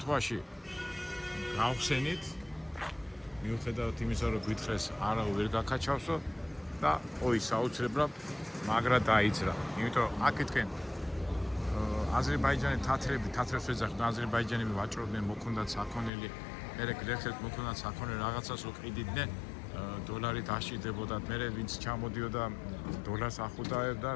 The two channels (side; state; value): right; drops out; at 16.1 s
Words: გავხსენით მიუხედავად იმისა რომ გვითხრეს არა ვერ გაკაჩავსო და ой საოცრებლად მაგრა დაიძრა იმიტომ რომ აქეთკენ აზერბაიჯანი თათრებს ეძახდნენ აზერბაიჯანები ვაჭრობდნენ მოქონდათ საქონელი მერე გლეხებს მოქონდათ საქონელი რაღაცას რო ყიდიდნენ დოლარი დაშიდებოდა მერე ვინც ჩამოდიოდა დოლარს ახუდავდა